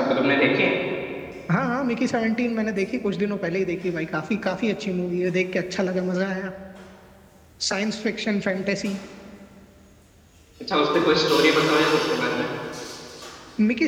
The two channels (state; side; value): identical; both; correlation 1.00